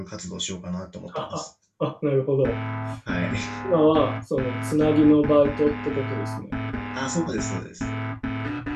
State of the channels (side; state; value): both; identical; correlation 1.00